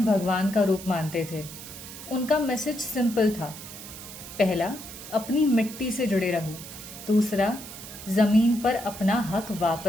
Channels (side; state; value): right; noise; hiss, 13 dB below the sound